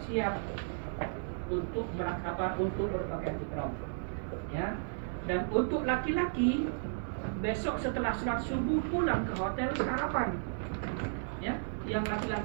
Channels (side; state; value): left; silent; digital silence